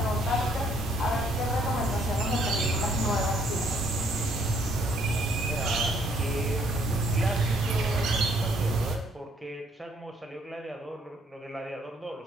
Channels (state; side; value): normal; both; correlation 0.66